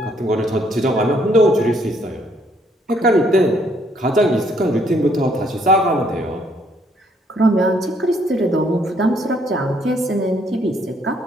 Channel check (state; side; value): normal; both; correlation 0.68